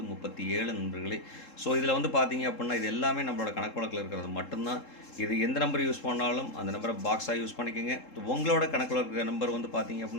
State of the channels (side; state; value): right; late; 3.7 ms